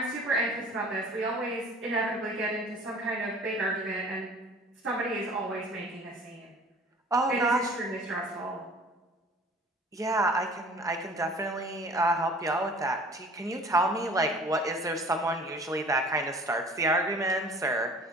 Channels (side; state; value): both; normal; correlation 0.48